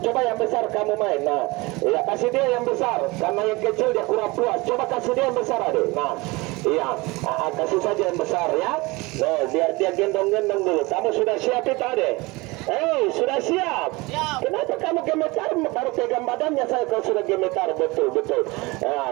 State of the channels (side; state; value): left; quieter; 23.5 dB